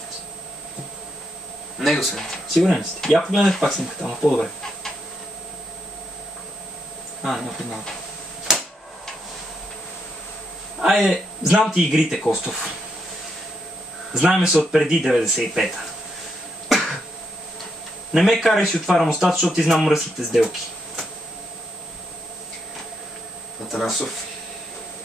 Него съм. Сигурен ли сте? Я погледнете пак снимката, ама по-добре. Не познавам. Айде, знам ти игрите, Костов. Знаеме се от преди 95-та. Не ме карай си отварям устата, защото ти знам мръсните сделки. Атанасов,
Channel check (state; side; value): normal; both; correlation 0.80